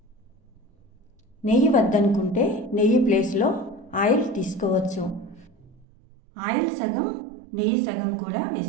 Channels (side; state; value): left; drops out; at 5.9 s